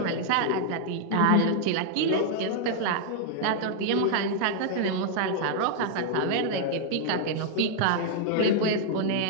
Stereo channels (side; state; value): both; different; correlation -0.01